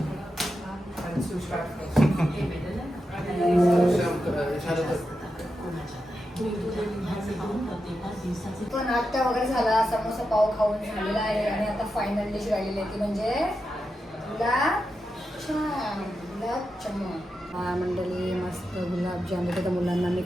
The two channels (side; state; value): both; normal; correlation 0.88